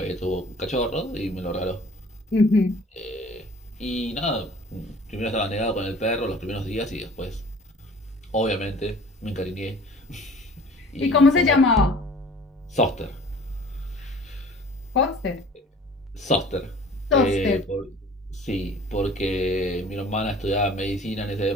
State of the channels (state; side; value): normal; both; correlation 0.47